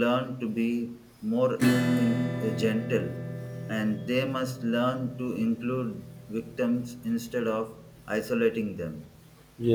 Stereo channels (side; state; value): both; identical; correlation 1.00